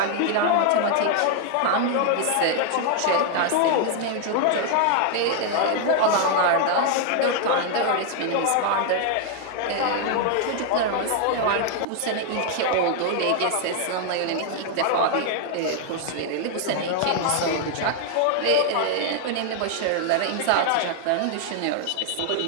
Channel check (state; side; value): different; both; correlation 0.00